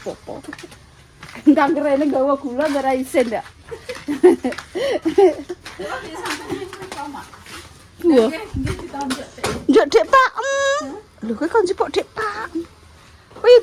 apa-apa. Ndang rene gawa gula ora isin ndak. Wah. Njuk Dik Pak. Lho kowe kon jupuk Dik Pak. Kowe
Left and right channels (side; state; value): both; identical; correlation 1.00